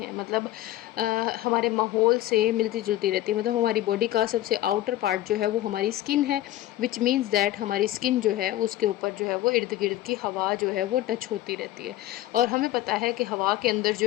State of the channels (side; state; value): right; quieter; 14.9 dB